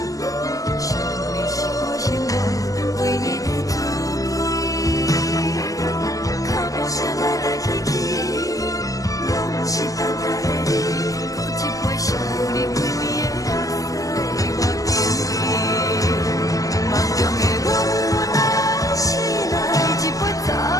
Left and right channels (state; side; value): late; right; 0.17 ms